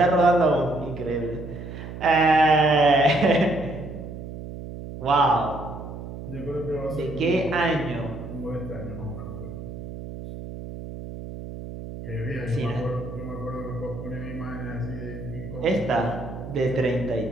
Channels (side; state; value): right; noise; hum, 10 dB below the sound